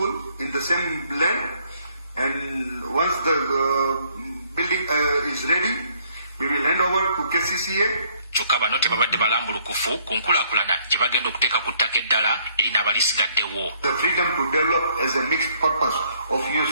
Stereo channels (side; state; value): both; inverted; correlation -0.66